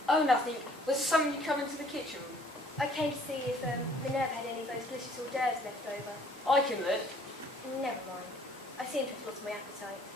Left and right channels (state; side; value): normal; both; correlation 0.58